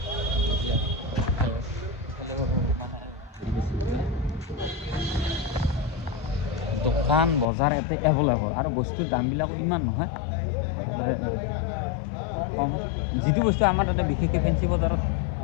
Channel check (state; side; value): drops out; right; at 7.5 s